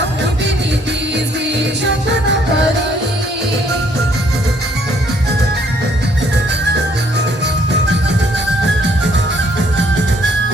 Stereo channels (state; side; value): normal; both; correlation 0.65